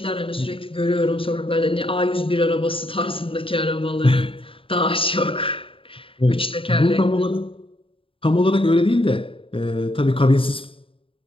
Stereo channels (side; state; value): right; late; 0.26 ms